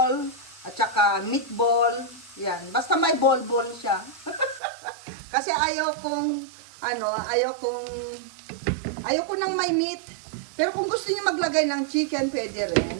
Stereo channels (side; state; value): left; drops out; at 4.6 s